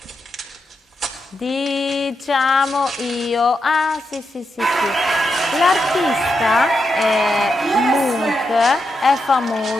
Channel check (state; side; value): normal; both; correlation 0.85